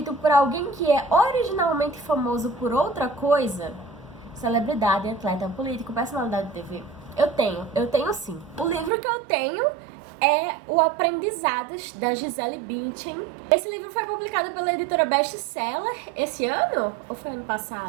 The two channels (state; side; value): drops out; left; at 8.9 s